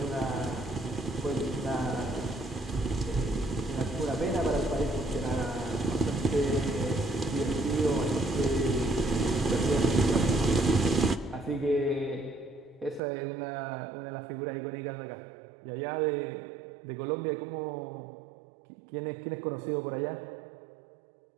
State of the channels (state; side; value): drops out; left; at 13.0 s